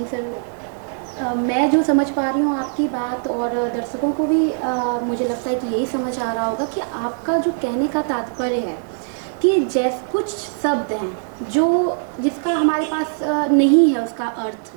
सर, मैं जो समझ पा रही हूँ आपकी बात, और दर्शकों को भी मुझे लगता है कि यही समझ आ रहा होगा कि आपका जो कहने का तात्पर्य है कि जैसे कुछ शब्द हैं जिसका हमारे पास नहीं है उसका अर्थ,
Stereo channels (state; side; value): silent; left; 65 dB below the other